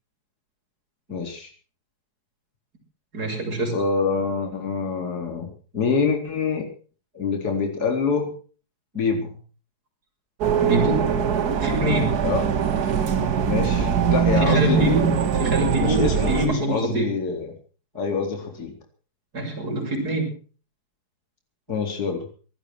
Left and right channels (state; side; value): late; left; 4.7 ms